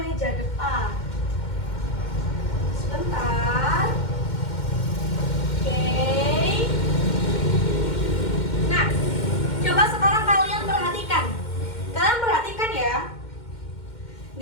depan. Sebentar. Oke. Nah, coba sekarang kalian perhatikan. Kalian perhatikan ya.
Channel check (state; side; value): late; right; 2.1 ms